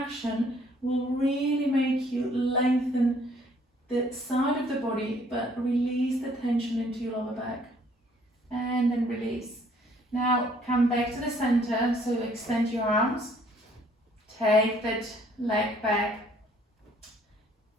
will really make you lengthen the side of the body, but release the tension into your lower back. And then release. Now come back to the center, so extend your arms. Take that leg back,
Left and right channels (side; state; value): both; normal; correlation 0.62